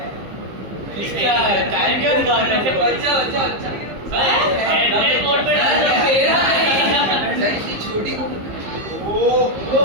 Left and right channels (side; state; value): left; late; 15 ms